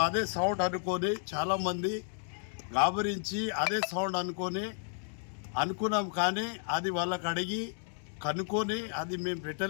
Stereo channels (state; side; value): silent; right; 56 dB below the other